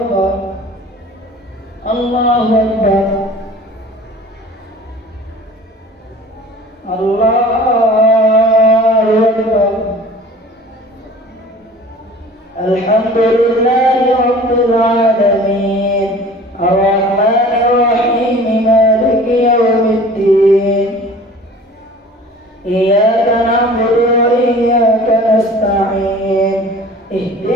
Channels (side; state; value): both; normal; correlation 0.44